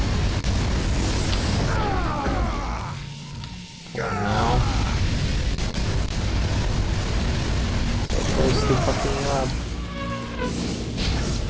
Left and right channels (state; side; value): identical; both; correlation 1.00